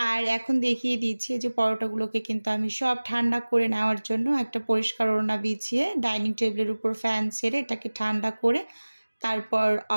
আর এখন দেখিয়ে দিচ্ছি যে পরোটাগুলোকে কিন্তু আমি সব ঠান্ডা করে নেওয়ার জন্য একটা পরিষ্কার ওড়না বিছিয়ে ডাইনিং টেবিলের উপর ফ্যান ছেড়ে এটাকে ঠান্ডা করে তারপর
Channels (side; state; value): both; inverted; correlation -1.00